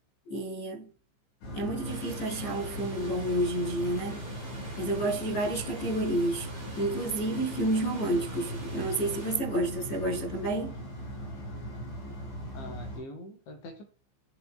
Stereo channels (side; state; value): right; late; 15 ms